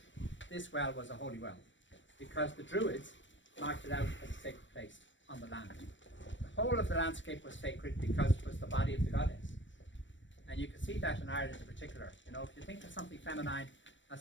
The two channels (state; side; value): late; right; 0.54 ms